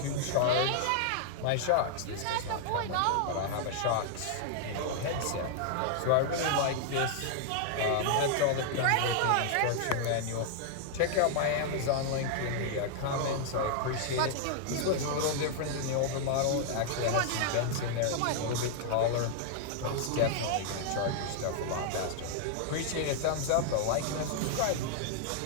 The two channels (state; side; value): different; both; correlation -0.01